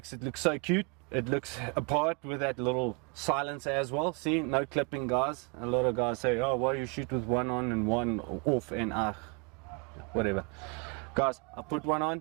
it look so cute. It looks apart with that little silencer as well. See, no clipping, guys. A lot of guys say, oh, why you shoot with one on and one off, and whatever. Guys, I put one on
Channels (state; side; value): quieter; left; 33.5 dB